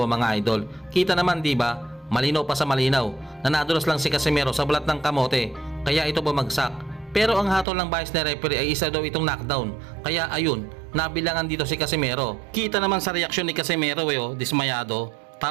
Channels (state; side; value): drops out; left; at 7.7 s